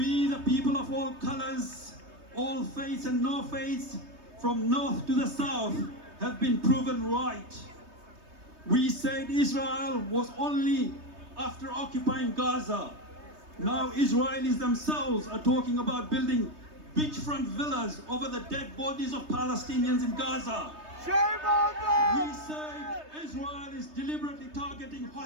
the people of all colors, all faiths and no faiths, from north to the south, have been proven right. We said Israel was only after occupying Gaza. Now Israelis themselves are talking about building beachfront villas over the dead bodies of Palestinians in Gaza. Shame on them! We say Israel is deliberately targeting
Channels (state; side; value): late; left; 3.2 ms